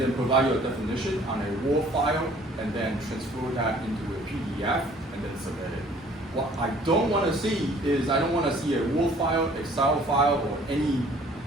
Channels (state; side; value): normal; both; correlation 0.55